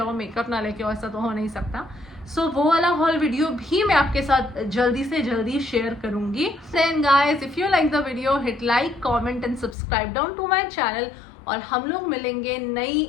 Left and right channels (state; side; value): drops out; right; at 9.8 s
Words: मेकअप ना लेके ऐसा तो हो नहीं सकता. सो वो वाला हॉल वीडियो भी मैं आपके साथ जल्दी से जल्दी शेयर करूंगी. Then guys, if you like the video, hit like, comment and subscribe down to my channel. और हम लोग मिलेंगे नई